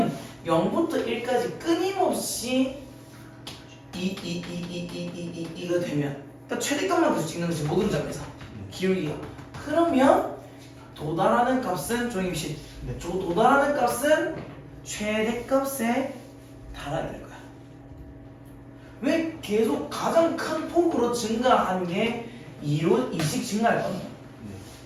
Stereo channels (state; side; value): identical; both; correlation 1.00